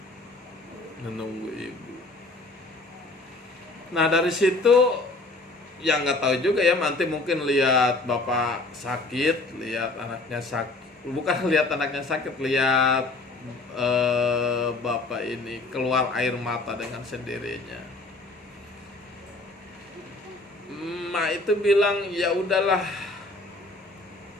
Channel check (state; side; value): quieter; right; 3.1 dB